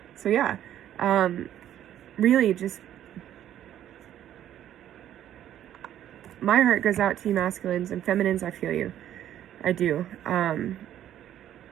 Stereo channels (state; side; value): quieter; left; 11.3 dB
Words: So yeah, really just, my heart goes out to you masculines and feminines. I feel you. I do.